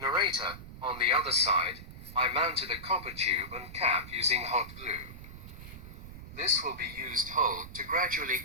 Narrator, on the other side, I mounted a copper tube and cap using hot glue. This will be used hold to gradually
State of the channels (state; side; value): noise; right; rumble, 14 dB below the sound